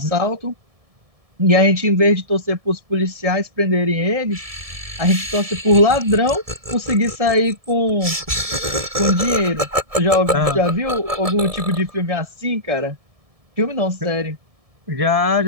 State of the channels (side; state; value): left; late; 1.7 ms